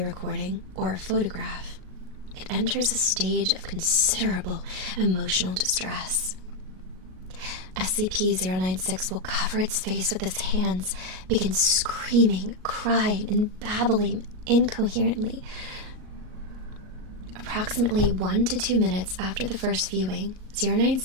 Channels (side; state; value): left; late; 38 ms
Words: recording, or a photograph, it enters a stage of considerable emotional distress. SCP-096 will cover its face with its hands, begin screaming, crying, and babbling incoherently. Approximately 1 to 2 minutes after the first viewing,